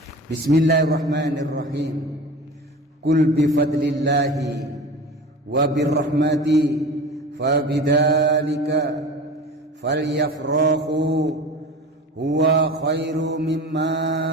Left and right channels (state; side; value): normal; both; correlation 0.34